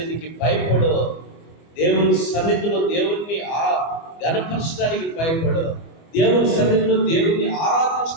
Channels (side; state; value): right; late; 24 ms